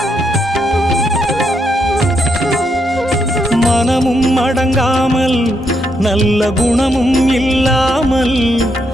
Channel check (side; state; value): both; normal; correlation 0.78